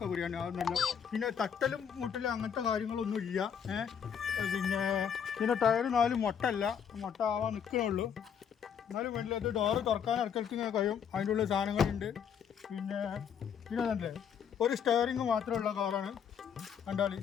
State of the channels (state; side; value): quieter; right; 7.7 dB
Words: ബിരിയാണി അത് നല്ല. പിന്നെ തട്ടലും മുട്ടലും അങ്ങനത്തെ കാര്യങ്ങളൊന്നും ഇല്ല. പിന്നെ ടയർ 4 മുട്ട ആവാൻ നിൽക്കണുള്ളൂ. എന്നാലും വേണ്ടില്ല. അത് ഡോറ് തുറക്കാൻ ഇറക്കലത്ത് ഇങ്ങനെ കഴിയും. അതിൻ്റെ ഉള്ളിൽ സാധനങ്ങളുണ്ട്. പിന്നെ തന്നെ ഒരു സ്റ്റെയറിങ് മാത്രമുള്ള കാറാണ്. കണ്ടാൽ